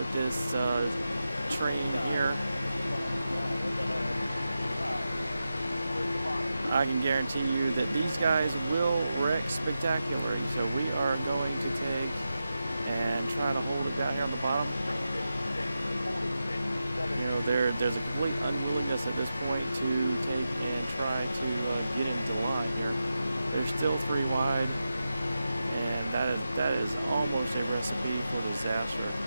this train here. I can guarantee you that these guys will wreck spectacularly. So we are going to take and try to hold it down here on the bottom. You know, there's a complete unwillingness at this point to take and try to get into the line here. They're still 3 wide, and that is almost a recipe for disaster.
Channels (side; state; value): both; inverted; correlation -0.91